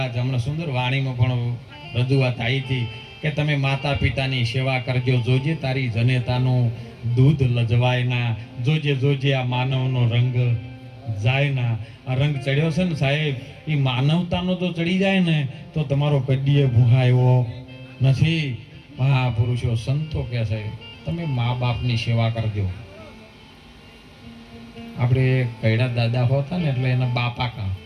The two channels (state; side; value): identical; both; correlation 1.00